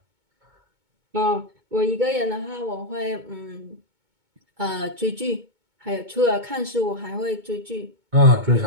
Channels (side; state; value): left; late; 2.2 ms